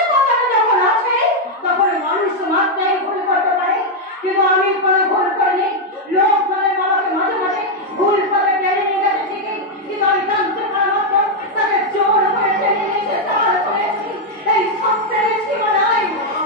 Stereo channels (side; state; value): both; normal; correlation 0.00